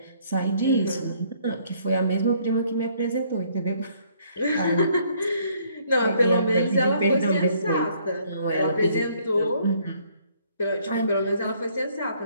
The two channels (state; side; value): inverted; both; correlation -0.65